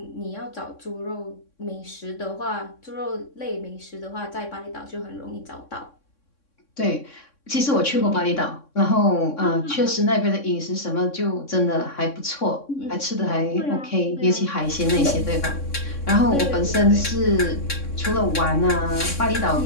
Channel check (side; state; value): right; late; 3.6 ms